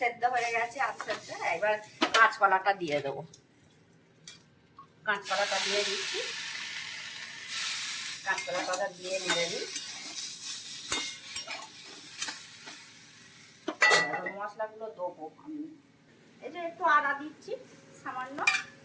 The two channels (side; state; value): both; identical; correlation 1.00